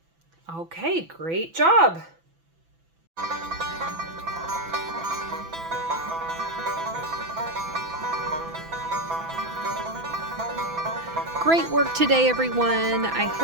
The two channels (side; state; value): left; late; 6.0 ms